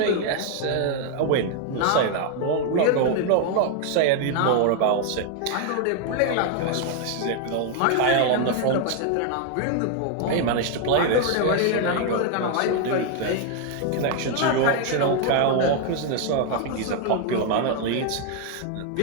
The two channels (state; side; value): different; both; correlation 0.01